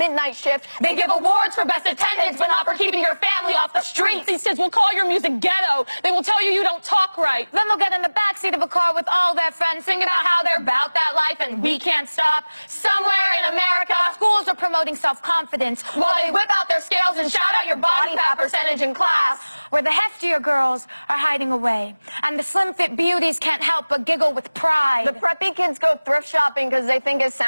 shift. They give awards for best attendance, but not for keeping your family off the streets. These kids will call your music ghetto. They will tell you don't talk right. Then they'll get in the backseat of a car with all their friends, singing about how they're about that life and we can't stop. Somewhere in America, schools are promoting self-confidence while they whip out their scales and shout out your body fat percentage in class. Where the heftier girls are hiding away, and the slim-fit beauties can't help but giggle with pride. The preppy kids go thrift shopping because they think it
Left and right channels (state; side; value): inverted; both; correlation -1.00